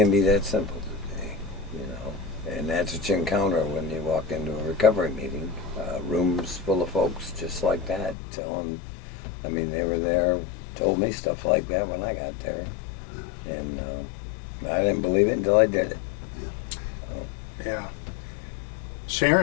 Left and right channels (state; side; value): drops out; right; at 8.2 s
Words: be that simple today, you know. And that's what you encounter when you walk into a recovery meeting. Rooms full of folks just like that, telling. I mean, they were there, told me stuff like that when I got there, and I didn't believe it until I did it. Yeah.